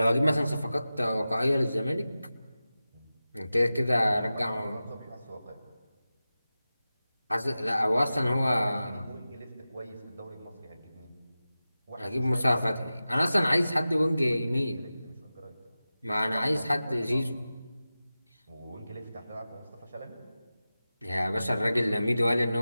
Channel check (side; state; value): both; inverted; correlation -0.95